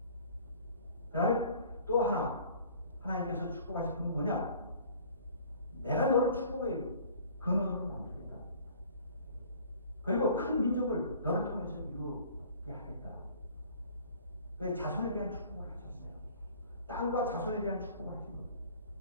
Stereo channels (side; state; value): both; inverted; correlation -0.50